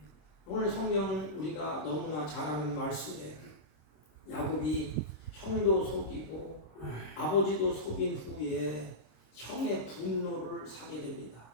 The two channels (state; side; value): late; right; 26 ms